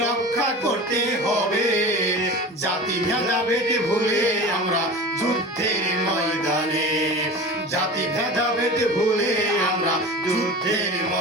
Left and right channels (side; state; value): both; normal; correlation 0.34